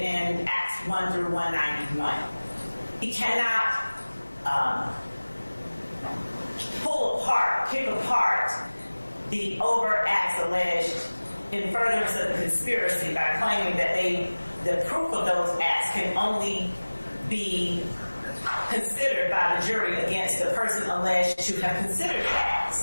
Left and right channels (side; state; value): both; inverted; correlation -1.00